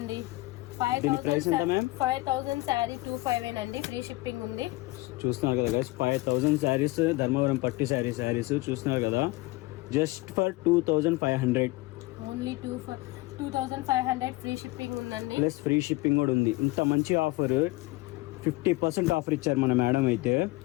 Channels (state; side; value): quieter; right; 20.9 dB